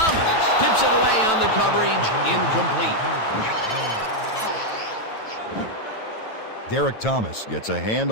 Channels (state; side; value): late; right; 9.1 ms